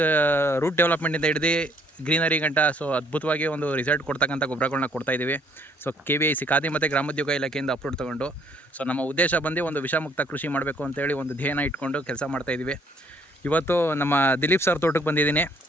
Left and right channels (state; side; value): normal; both; correlation 0.64